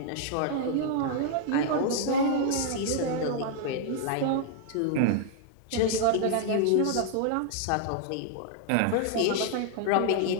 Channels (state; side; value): different; both; correlation 0.00